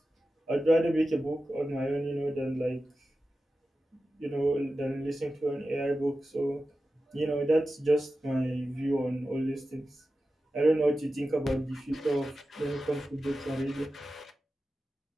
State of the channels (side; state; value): both; normal; correlation 0.93